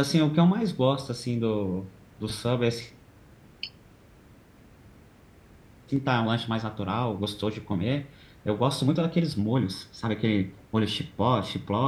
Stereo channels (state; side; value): identical; both; correlation 1.00